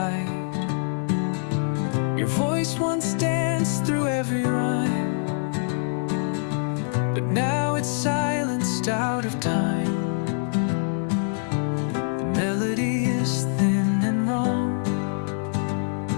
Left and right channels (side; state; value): right; silent; 62 dB below the other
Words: Your voice once danced through every rhyme, but now it's silenced out of time. Melody is thin and wrong,